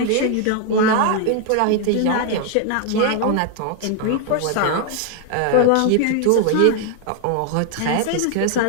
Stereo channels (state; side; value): different; both; correlation 0.00